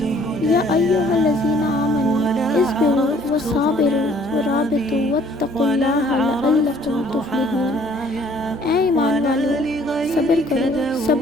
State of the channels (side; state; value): both; normal; correlation 0.59